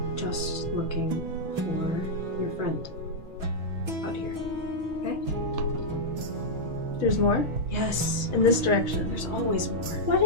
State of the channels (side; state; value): left; late; 6.2 ms